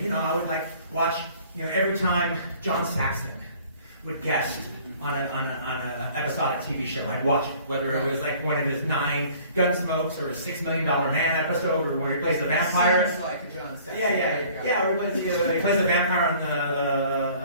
I would watch every time John Saxon would guest on an episodic TV show. I'd watch it, whether it was like one of his 9 Gunsmokes or a $6 Million Man episode, or where he plays the vampire. Seems like a John Saxon. Yeah. Or he plays the vampire on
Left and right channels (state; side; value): inverted; both; correlation -0.52